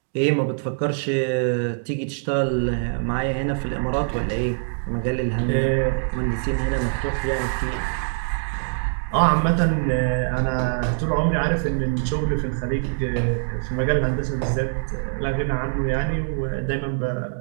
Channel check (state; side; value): silent; left; digital silence